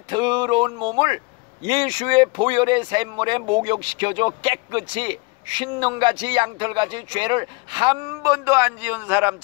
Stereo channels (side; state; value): right; quieter; 27.2 dB